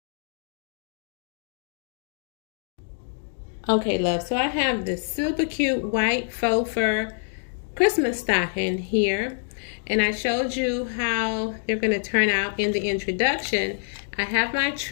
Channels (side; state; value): right; silent; digital silence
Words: Okay, love, so I have this super cute white faux fur Christmas stocking here, and I showed you how they're going to turn out in the introduction. I have my